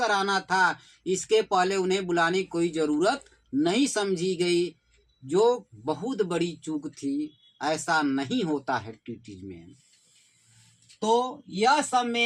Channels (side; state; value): both; identical; correlation 1.00